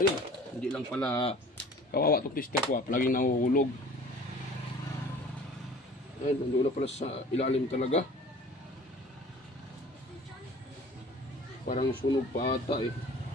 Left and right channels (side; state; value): both; normal; correlation 0.46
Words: hindi lang pala kawawa itong tester ko palaging nahuhulog. Ayun, nandun na pala sa ilalim talaga. Parang sunog pa ata eh.